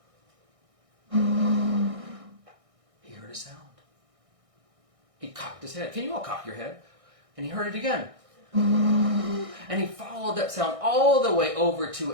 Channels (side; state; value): left; late; 1.6 ms